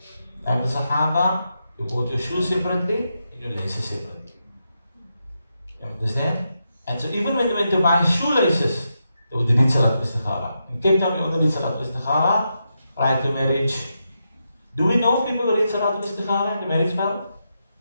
Like the Sahaba, you bought your shoes separately, your laces separately. You understand? And so even when you went to buy shoelaces, they would read Salatul Istikhara. In Cape Town, we only read Salatul Istikhara prior to marriage. Do we know people who read Salatul Istikhara in the marriage vow?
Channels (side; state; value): both; inverted; correlation -0.85